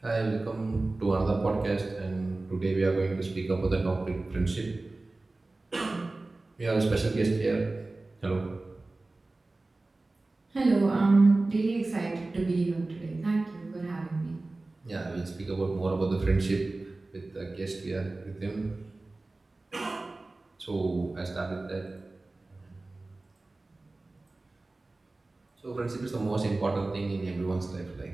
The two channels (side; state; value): left; quieter; 3.1 dB